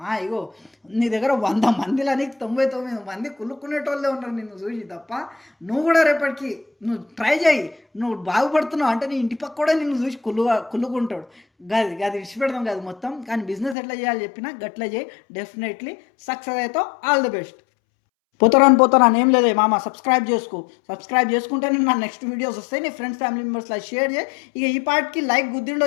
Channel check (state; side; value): drops out; right; at 13.8 s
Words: ఇగో నీ దగ్గర 100 మందిలని 99 మంది కుళ్ళుకునేటోళ్ళే ఉన్నారు నిన్ను చూసి తప్ప. నువ్వు కూడా రేపటికి నువ్వు ట్రై చేయి, నువ్వు బాగుపడుతున్నావు అంటే నీ ఇంటి పక్క కూడా నిన్ను చూసి కుళ్ళుకుంటాడు. గది విడిచిపెడదాం కాదు మొత్తం. కానీ బిజినెస్ ఎట్లా చేయాలి చెప్పినా గట్లా చేయి, డెఫినెట్లీ సక్సెస్ అవుతావు. All the best. పోతారాని ఏం లేదే మామ, సబ్స్క్రైబ్ చేసుకుంటే నీకు నా నెక్స్ట్ వీడియోస్ వస్తాయి. నీ ఫ్రెండ్స్ ఫ్యామిలీ మెంబర్స్లో షేర్ చేయి. ఇక ఈ పార్ట్కి లైక్